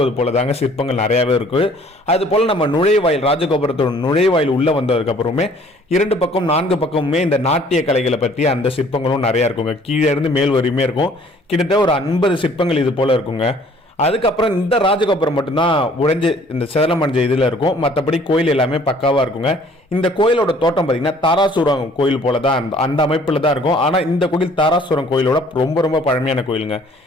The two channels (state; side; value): normal; both; correlation 0.56